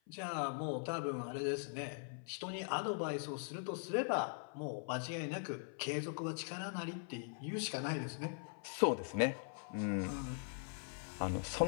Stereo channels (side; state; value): right; silent; 50 dB below the other